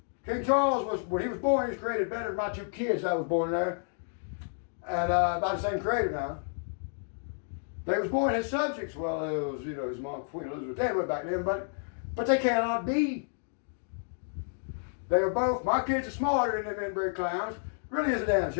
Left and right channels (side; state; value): right; silent; digital silence